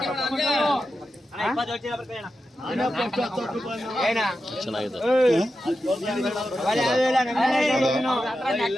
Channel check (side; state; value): both; normal; correlation 0.90